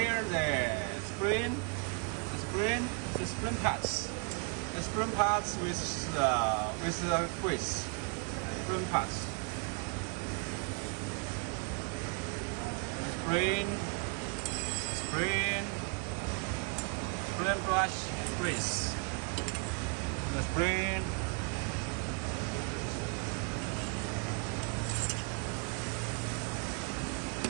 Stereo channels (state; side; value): quieter; left; 36.9 dB